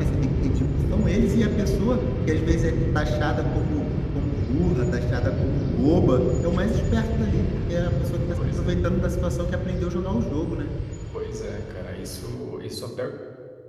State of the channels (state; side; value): identical; both; correlation 1.00